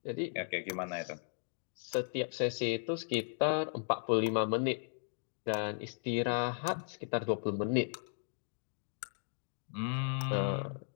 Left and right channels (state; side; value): silent; right; digital silence